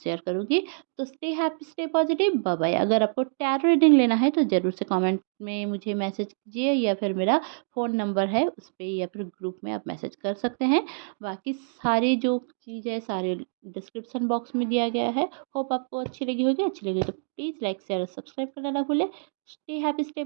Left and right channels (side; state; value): left; silent; digital silence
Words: शेयर करूँगी। तो stay happy, stay positive, bye bye. अगर आपको टैरो रीडिंग लेना है तो ज़रूर से कमेंट में मुझे मैसेज कीजिए, या फिर मेरा फ़ोन नंबर है उस पे, या फिर ग्रुप में आप मैसेज कर सकते हैं। बाकी सारी जो चीज़ है सारे डिस्क्रिप्शन बॉक्स में दिया गया है। होप आपको अच्छी लगी होगी, अच्छी लगी तो प्लीज़ लाइक शेयर और सब्सक्राइब करना ना भूलें। Stay happy, stay